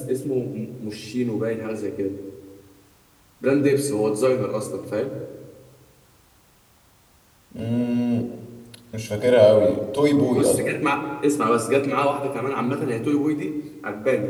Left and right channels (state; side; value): identical; both; correlation 1.00